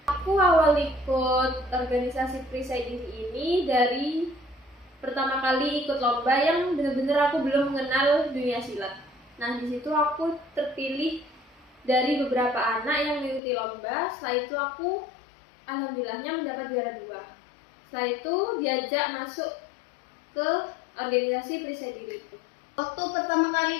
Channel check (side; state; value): right; drops out; at 13.4 s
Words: Aku awal ikut organisasi perisai diri ini dari pertama kali ikut lomba yang benar-benar aku belum mengenal dunia silat. Nah, di situ aku terpilih dari beberapa anak yang mengikuti lomba. Setelah itu aku alhamdulillahnya mendapat juara 2. Setelah itu diajak masuk ke organisasi perisai diri itu. Waktu pertama